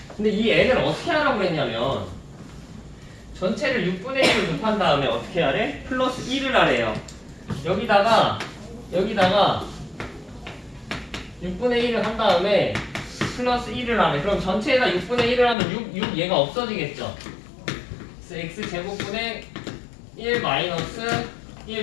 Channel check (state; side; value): drops out; right; at 15.6 s